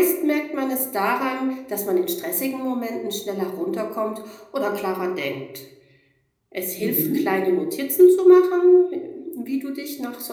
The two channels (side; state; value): both; identical; correlation 1.00